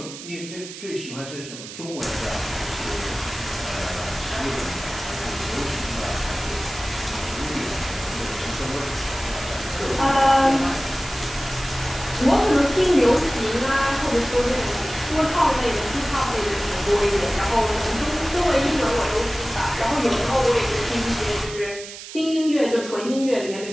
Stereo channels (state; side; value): noise; right; hiss, 12 dB below the sound